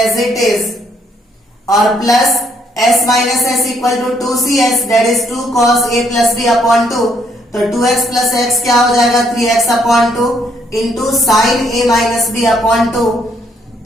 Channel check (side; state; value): both; normal; correlation 0.70